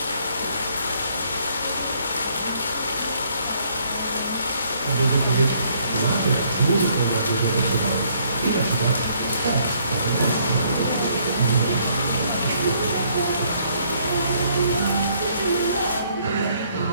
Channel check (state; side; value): inverted; both; correlation -0.66